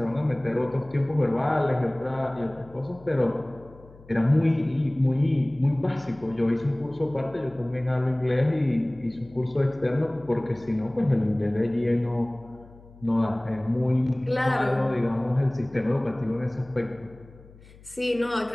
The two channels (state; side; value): noise; left; hum, 23 dB below the sound